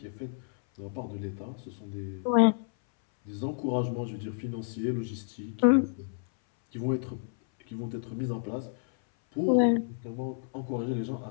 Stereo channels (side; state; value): right; silent; 58 dB below the other